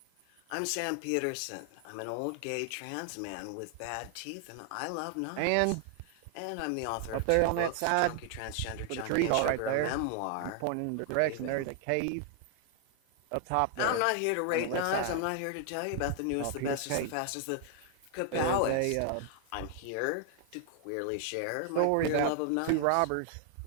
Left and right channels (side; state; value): both; different; correlation 0.00